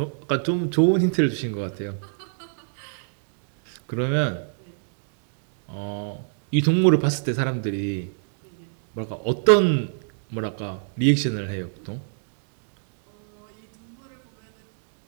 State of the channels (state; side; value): silent; left; digital silence